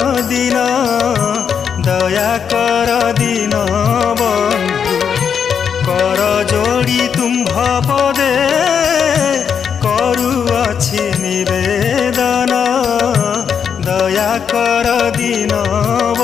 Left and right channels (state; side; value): quieter; right; 7.2 dB